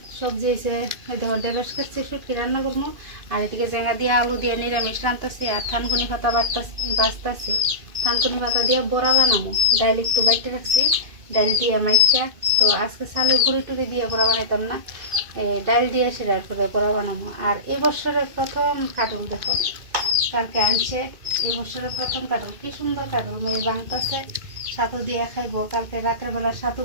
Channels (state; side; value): late; left; 2.5 ms